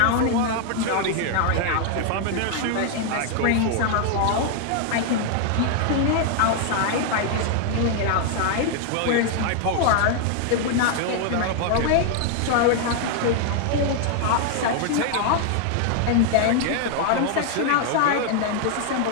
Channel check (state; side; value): different; both; correlation 0.00